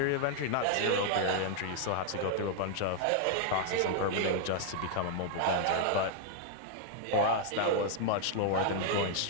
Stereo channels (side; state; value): both; different; correlation 0.00